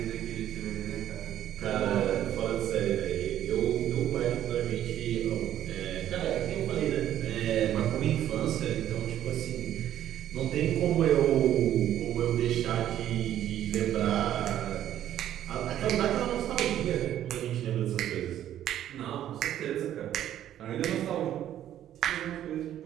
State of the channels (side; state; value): left; quieter; 11.6 dB